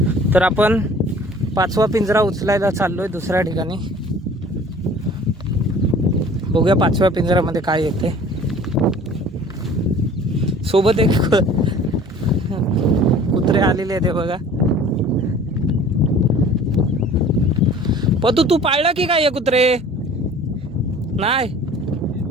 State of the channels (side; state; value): both; normal; correlation 0.48